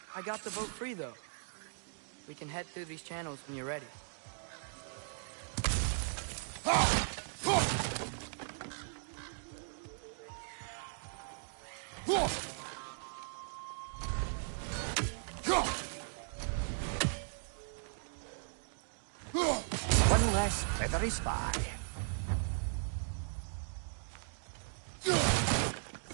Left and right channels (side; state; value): left; silent; digital silence